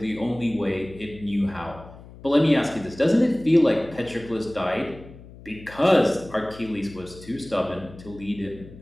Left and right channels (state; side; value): noise; left; hum, 18 dB below the sound